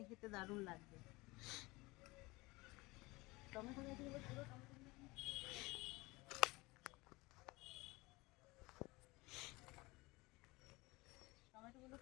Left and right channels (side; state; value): right; quieter; 22.7 dB